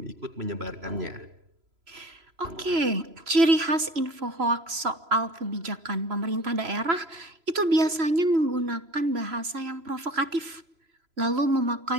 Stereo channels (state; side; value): late; left; 3.0 ms